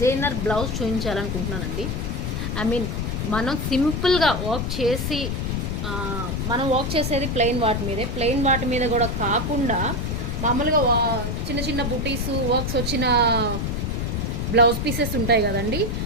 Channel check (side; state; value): left; noise; rumble, 2 dB below the sound